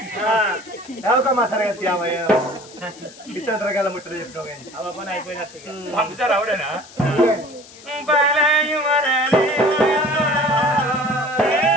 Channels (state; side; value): noise; left; hiss, 20 dB below the sound